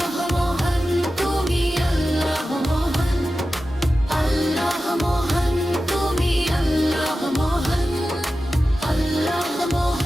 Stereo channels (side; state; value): both; normal; correlation 0.93